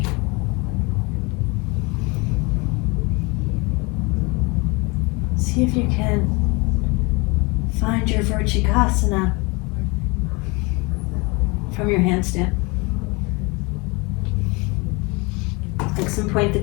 See if you can find your vrschikasana from your handstand. Flex and point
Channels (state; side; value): quieter; right; 27.2 dB